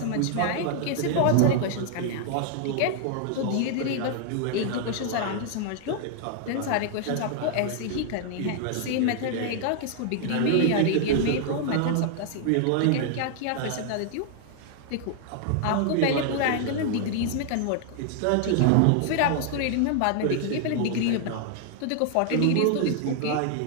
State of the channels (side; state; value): both; different; correlation 0.00